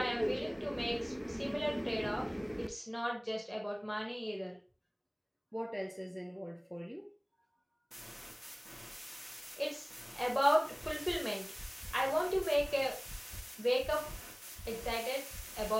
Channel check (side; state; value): both; identical; correlation 1.00